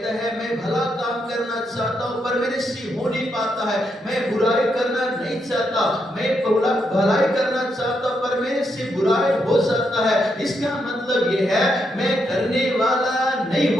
है मैं भला काम करना चाहता हूं पर मेरे से हो नहीं पाता है, मैं बुराई करना नहीं चाहता, मैं भलाई करना चाहता पर मेरे से बुराई हो जाता है। इसका मतलब ये है मैं करने वाला नहीं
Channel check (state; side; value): normal; both; correlation 0.80